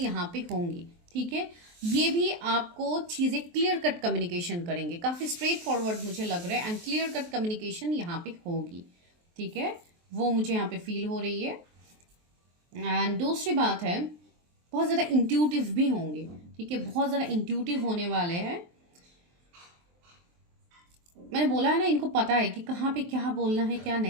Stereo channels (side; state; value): left; late; 23 ms